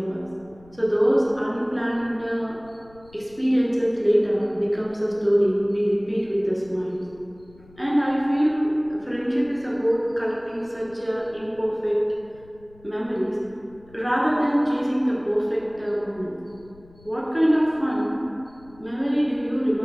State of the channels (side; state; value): left; noise; rumble, 25 dB below the sound